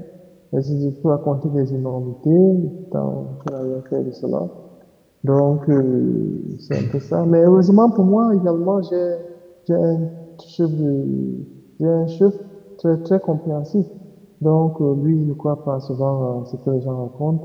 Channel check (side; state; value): both; identical; correlation 1.00